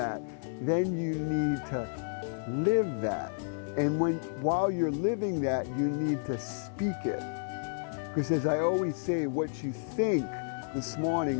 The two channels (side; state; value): right; silent; digital silence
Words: then you need to live that. And while you're living that, you need to speak it. Because as I always say, what you think this